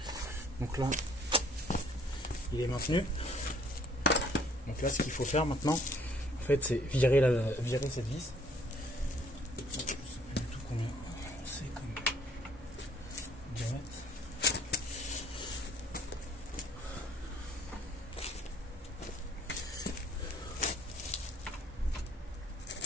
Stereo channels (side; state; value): both; normal; correlation 0.60